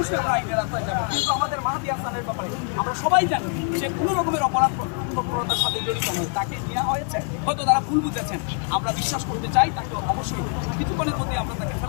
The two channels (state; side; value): quieter; right; 39.3 dB